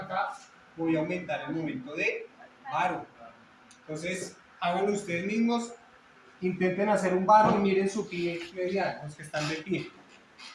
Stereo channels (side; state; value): both; identical; correlation 1.00